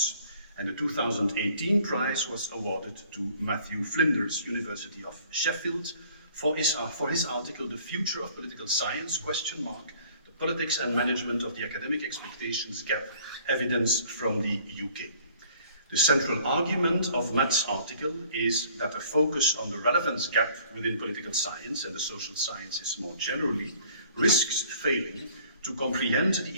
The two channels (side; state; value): both; inverted; correlation -0.55